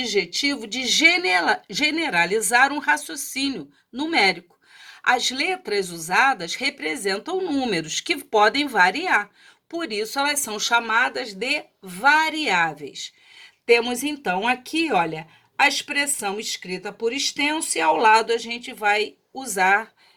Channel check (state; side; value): identical; both; correlation 1.00